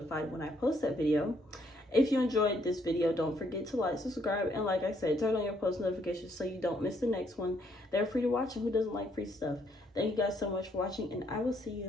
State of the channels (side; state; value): both; normal; correlation 0.70